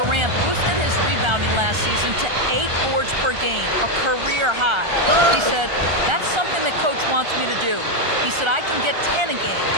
boosted his rebounding last season to 8 boards per game, a career high. He said, that's something that coach wants me to do. He said, I can get 10 a game.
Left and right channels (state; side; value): late; left; 1.3 ms